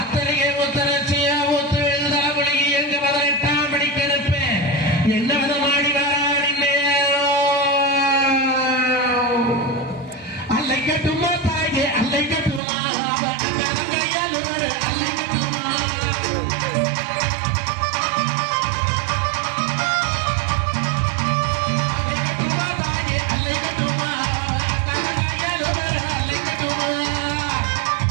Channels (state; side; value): drops out; left; at 12.6 s